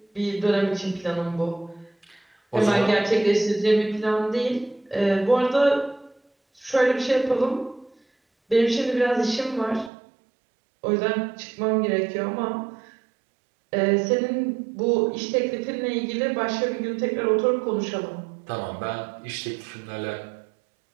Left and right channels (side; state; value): left; drops out; at 9.9 s